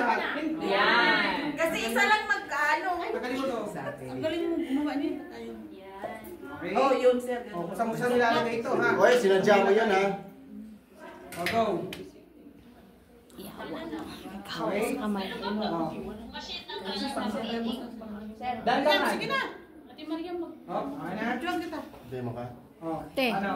Yan. Kasi isa lang magkano. Tanggalin mo to. Ang galing mo gumawa niyo. Okay? Oh, yun sir. O, kung saan mo nilalagay ito ha. Oy, sinadya mo yun ha. O, go. Kaos sa kamay. Dandan. Sige na. Ate Maria, mag... O, okay na? Diyan kita. Demo ka. O, Te. ano?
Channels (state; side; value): identical; both; correlation 1.00